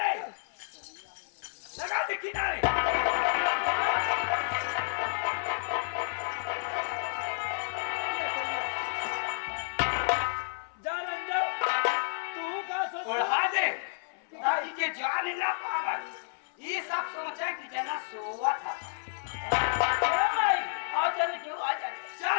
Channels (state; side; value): silent; right; 57 dB below the other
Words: लगा दे किनारे जा रंजन तू का सोच उड़ा दे ताकि के जान ना पावे ये सब सोचे कि जना सोवा था भाई आ चल क्यों आ जा